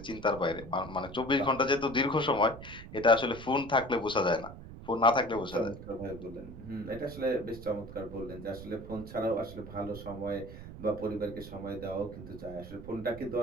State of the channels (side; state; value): right; noise; rumble, 13 dB below the sound